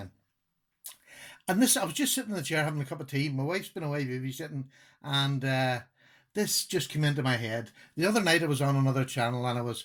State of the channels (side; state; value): both; identical; correlation 1.00